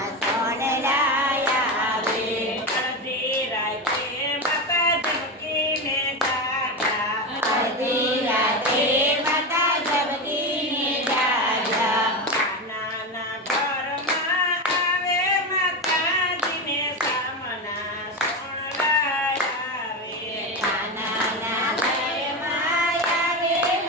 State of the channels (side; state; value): both; normal; correlation 0.18